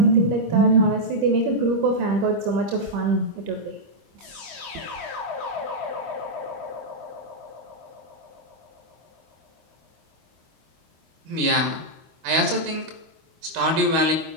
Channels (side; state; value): left; late; 25 ms